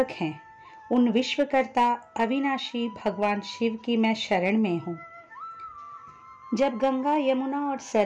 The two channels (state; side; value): identical; both; correlation 1.00